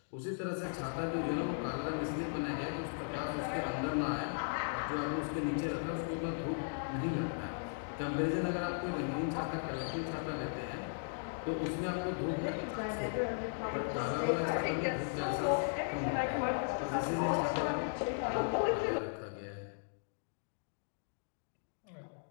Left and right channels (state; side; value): silent; right; digital silence